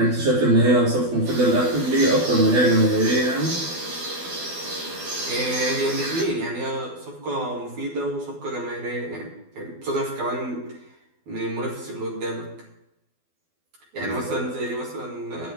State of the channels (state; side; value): late; left; 12 ms